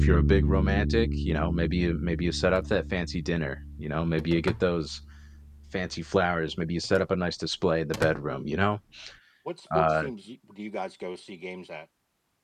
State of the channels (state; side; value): identical; both; correlation 1.00